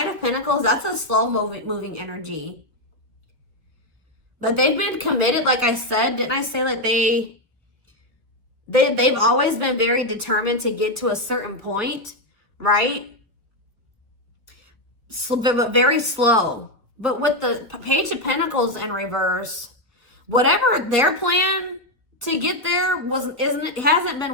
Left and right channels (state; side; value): late; left; 1.7 ms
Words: of Pentacles, that's a slow moving energy. But they've been committed, like I said. Didn't I say like they've always been very determined to get to a certain point, right? So, but very slow. But with the Page of Pentacles in reverse, whatever their plan to get there hasn't